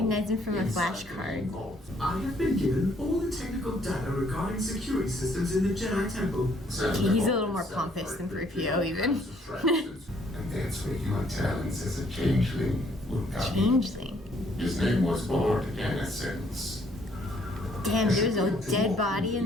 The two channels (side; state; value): both; normal; correlation 0.65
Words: him from a flashcard. I have been given all the technical data regarding security systems in the Jedi Temple. Okay, he's a little more pompous than 3PO even. And that's where your talents as a changeling will come in. Changeling. His name was Lord Innocence. Damn, there was a dead body